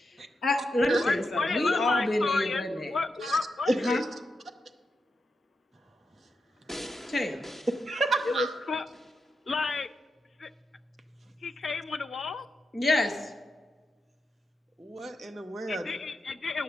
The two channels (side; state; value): both; normal; correlation 0.87